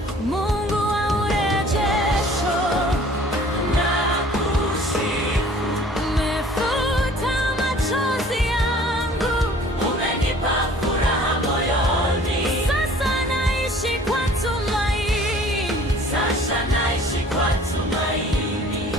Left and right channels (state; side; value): normal; both; correlation 0.51